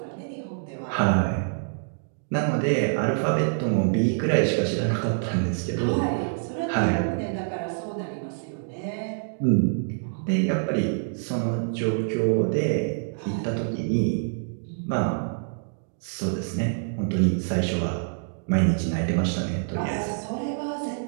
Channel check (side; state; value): left; silent; digital silence